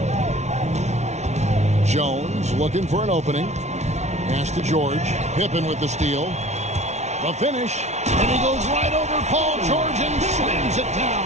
Jones looking for an opening. Pass to George. Pippen with the steal. The finish. And he goes right over Paul George and slams it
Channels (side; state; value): left; late; 0.32 ms